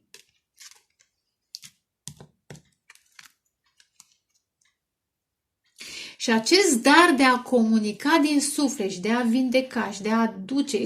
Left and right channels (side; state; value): both; identical; correlation 1.00